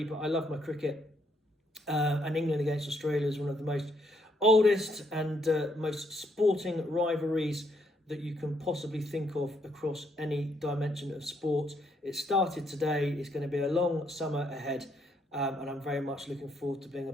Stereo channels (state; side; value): normal; both; correlation 0.73